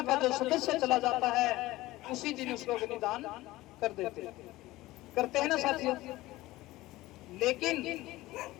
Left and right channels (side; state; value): right; quieter; 18.0 dB